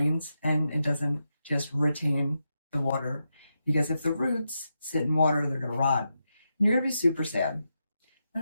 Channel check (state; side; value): inverted; both; correlation -0.87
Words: and it doesn't just retain the water, because if the roots sit in water, they're going to rot. And you're going to be super sad. I